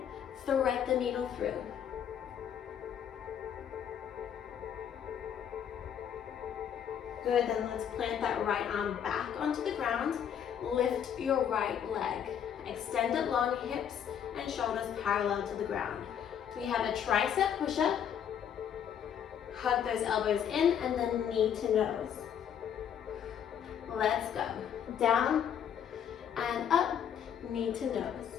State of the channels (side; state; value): right; quieter; 8.7 dB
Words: thread the needle through. Good, then let's plant that right arm back onto the ground. Lift your right leg. Extend it long, hips and shoulders parallel to the ground. We have a tricep push-up. Hug those elbows in and then knee to nose. Let's go. Down and up, knee to nose.